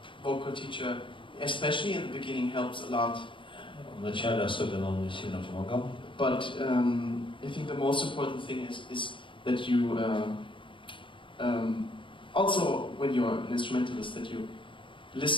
vocal teacher, especially in the beginning, helps a lot. В начале особенно он мне сильно помогал. But I think the most important thing is that you also, when you're an instrumentalist, that you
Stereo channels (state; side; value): late; right; 0.24 ms